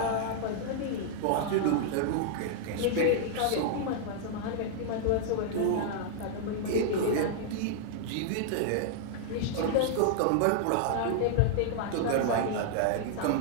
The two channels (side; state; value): both; different; correlation -0.01